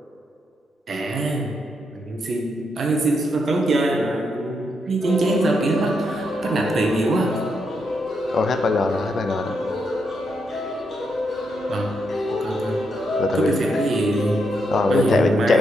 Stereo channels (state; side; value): normal; both; correlation 0.80